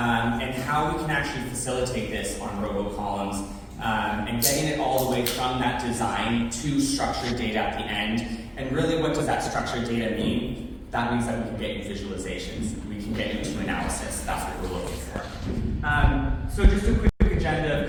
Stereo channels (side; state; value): both; identical; correlation 1.00